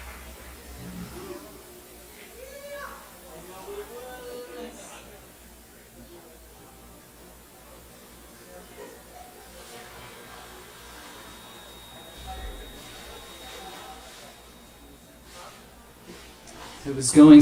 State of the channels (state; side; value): identical; both; correlation 1.00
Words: It was going